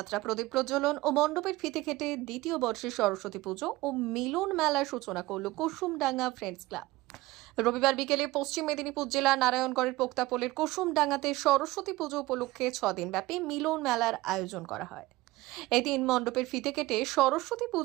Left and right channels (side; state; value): left; quieter; 19.0 dB